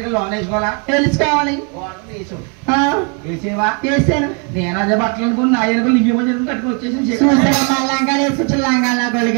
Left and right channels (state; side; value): quieter; left; 34.2 dB